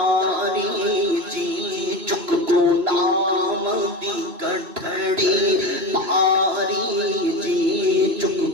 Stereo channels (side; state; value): left; late; 3.0 ms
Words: جی چک کو نام دی گٹھڑی پاری جی